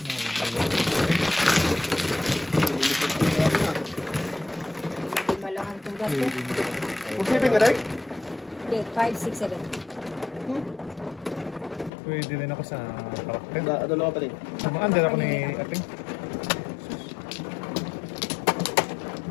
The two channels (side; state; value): right; drops out; at 11.9 s